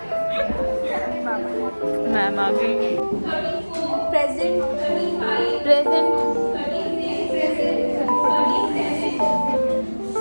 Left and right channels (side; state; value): both; inverted; correlation -1.00